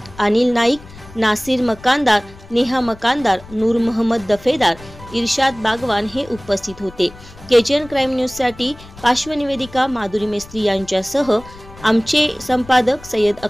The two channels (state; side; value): noise; left; rumble, 19 dB below the sound